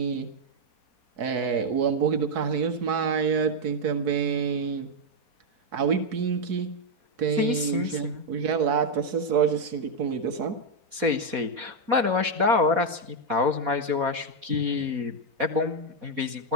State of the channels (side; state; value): left; late; 4.1 ms